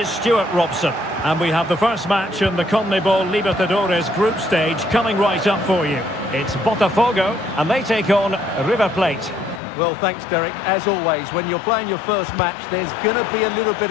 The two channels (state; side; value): drops out; right; at 9.6 s